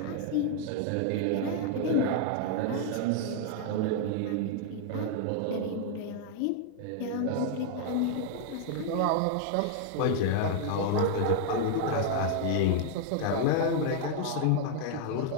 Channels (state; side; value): different; both; correlation 0.00